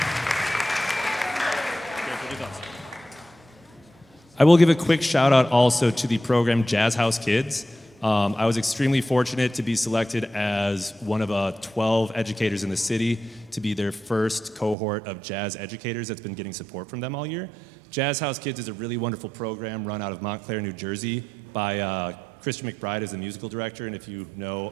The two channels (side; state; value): left; drops out; at 14.8 s